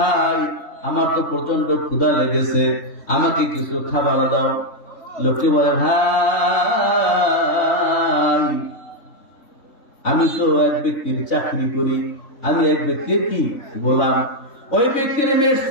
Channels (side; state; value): right; late; 3.6 ms